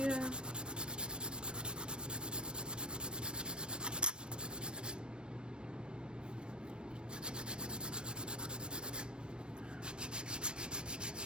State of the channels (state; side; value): late; left; 0.054 ms